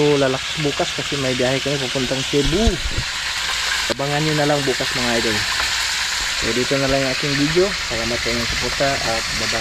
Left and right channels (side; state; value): both; identical; correlation 1.00